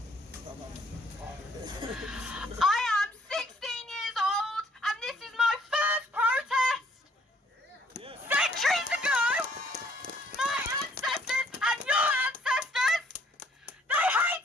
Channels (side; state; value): both; normal; correlation 0.64